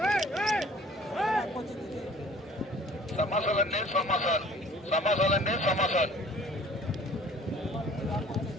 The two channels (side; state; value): both; normal; correlation 0.51